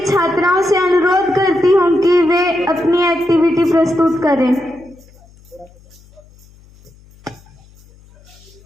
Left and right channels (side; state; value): left; noise; hum, 27 dB below the sound